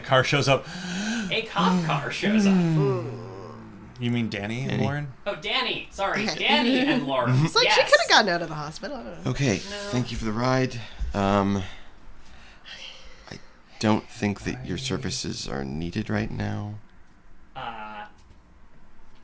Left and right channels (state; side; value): identical; both; correlation 1.00